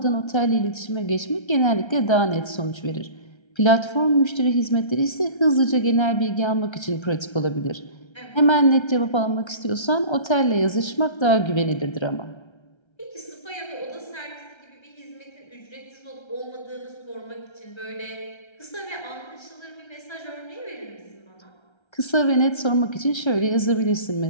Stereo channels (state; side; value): late; right; 1.3 ms